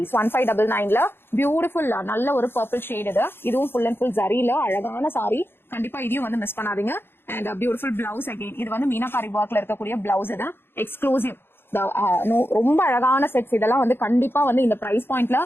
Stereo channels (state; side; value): late; right; 0.11 ms